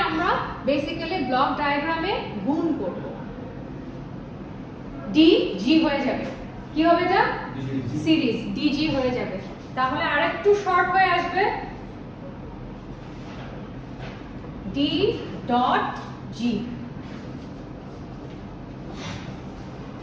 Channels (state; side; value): identical; both; correlation 1.00